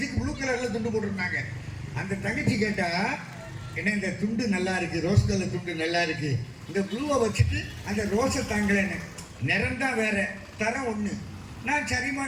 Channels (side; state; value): both; identical; correlation 1.00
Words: ப்ளூ கலரில் துண்டு போட்டிருந்தாங்க. அந்த தங்கச்சி கேட்டால், என்ன இந்த துண்டு நல்லா இருக்கு, ரோஸ் கலர் துண்டு நல்லா இருக்கு, இந்த ப்ளூவை வச்சுட்டு அந்த ரோஸை தாங்கலன்னு. நிறம் தான் வேற, தரம் ஒன்று. நான்